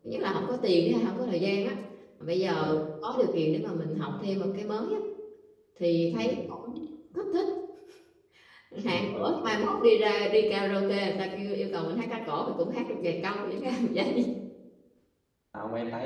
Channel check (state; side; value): identical; both; correlation 1.00